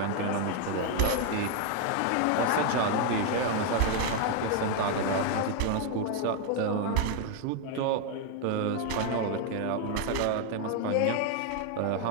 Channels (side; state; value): both; different; correlation 0.00